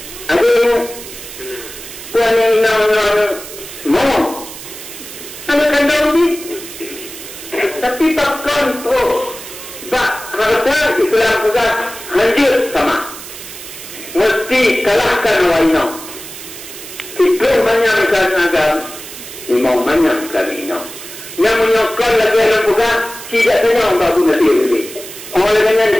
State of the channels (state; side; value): noise; right; hiss, 13 dB below the sound